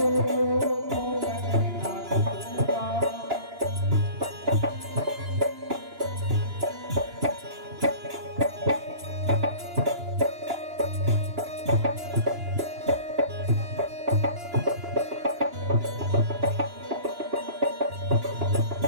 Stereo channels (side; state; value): left; late; 2.9 ms